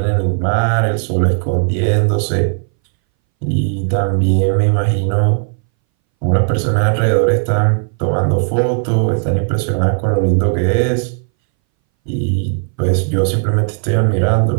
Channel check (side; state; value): left; silent; 64 dB below the other